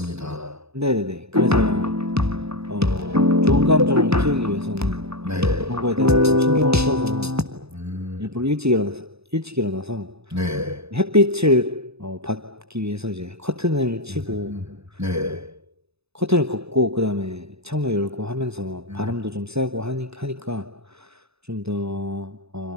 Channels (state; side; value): late; left; 0.79 ms